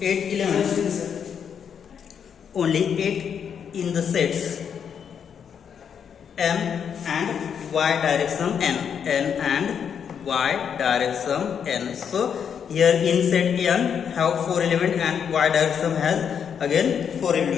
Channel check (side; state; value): right; quieter; 7.6 dB